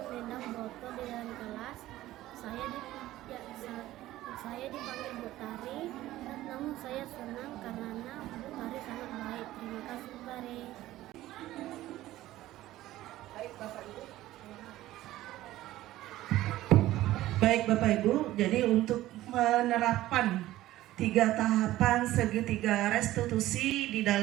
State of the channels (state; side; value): quieter; left; 15.5 dB